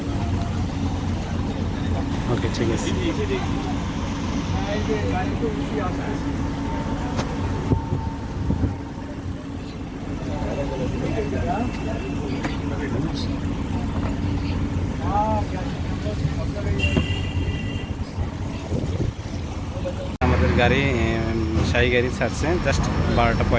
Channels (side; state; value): both; identical; correlation 1.00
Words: ওকে, ঠিক আছে। আমাদের গাড়ি শাহী গাড়ি ছাড়ছে জাস্ট